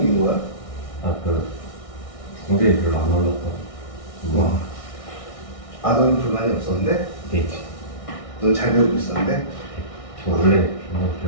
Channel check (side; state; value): right; late; 1.6 ms